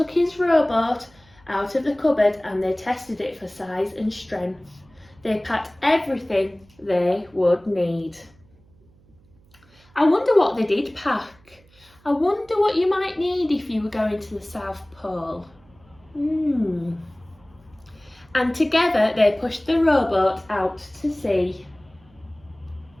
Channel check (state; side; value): noise; right; hum, 29 dB below the sound